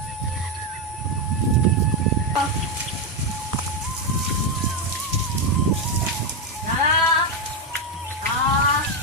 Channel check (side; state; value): both; normal; correlation 0.05